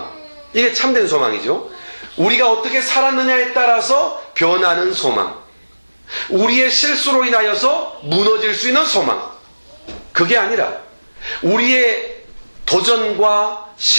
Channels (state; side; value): inverted; both; correlation -1.00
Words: 이게 참된 소망이죠. 우리가 어떻게 살았느냐에 따라서 변하는 소망, 우리의 실수로 인하여서 무너질 수 있는 소망, 그게 아니라 우리의 도전과